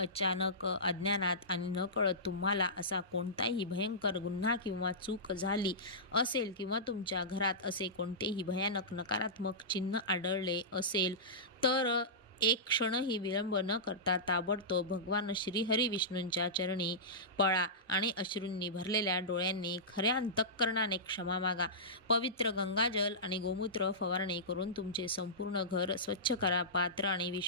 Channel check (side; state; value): both; normal; correlation -0.17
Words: अज्ञानात आणि नकळत तुम्हाला असा कोणताही भयंकर गुन्हा किंवा चूक झाली असेल किंवा तुमच्या घरात असे कोणतेही भयानक नकारात्मक चिन्ह आढळले असेल तर एक क्षणही विलंब न करता ताबडतोब भगवान श्रीहरी विष्णूंच्या चरणी पळा आणि अश्रूंनी भरलेल्या डोळ्यांनी खऱ्या अंतःकरणाने क्षमा मागा. पवित्र गंगाजल आणि गोमूत्र फवारणी करून तुमचे संपूर्ण घर स्वच्छ करा. पात्र आणि